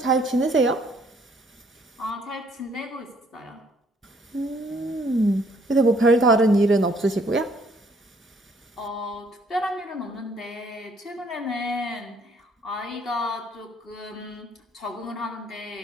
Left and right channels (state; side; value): normal; both; correlation 0.64